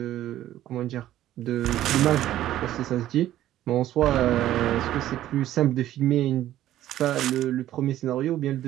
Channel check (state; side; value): quieter; left; 13.2 dB